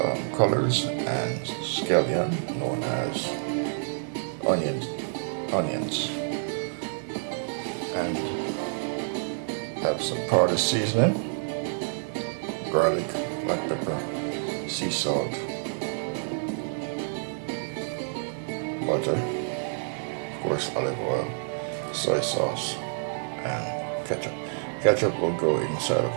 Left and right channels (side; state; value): left; silent; 59 dB below the other